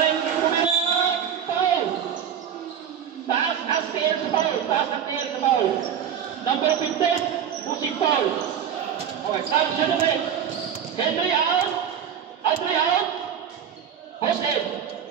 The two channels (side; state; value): left; quieter; 8.4 dB